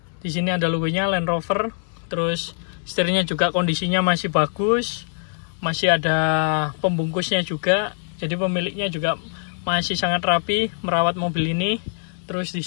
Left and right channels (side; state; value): right; silent; 60 dB below the other